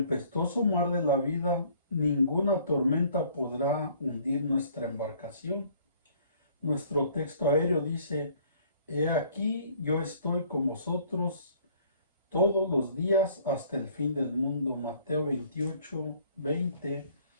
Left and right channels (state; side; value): inverted; both; correlation -0.58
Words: mar de la vida, ninguna tormenta podrá hundir nuestra embarcación. Nuestro texto aéreo dice: he aquí, yo estoy con vosotros todos los días hasta el fin del mundo. Mateo 28, 20.